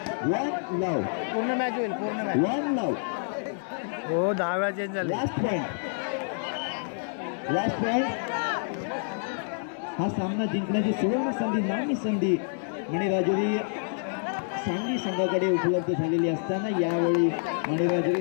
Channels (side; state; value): right; silent; digital silence